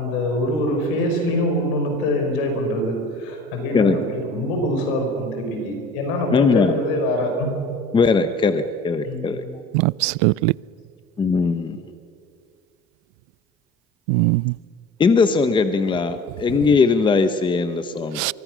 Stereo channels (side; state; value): both; normal; correlation 0.43